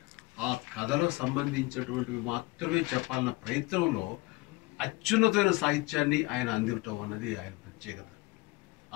ఆ కథలకు సంబంధించినటువంటివి మాత్రమే చెప్పాలన్న ప్రయత్నంలో అత్యున్నతమైన సాహిత్యాన్ని ఆయన అందించడం అన్నది ఆయన ప్రత్యేకత.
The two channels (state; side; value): quieter; right; 21.7 dB